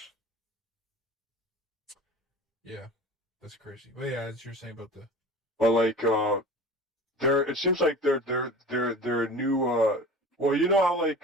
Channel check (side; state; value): both; normal; correlation 0.37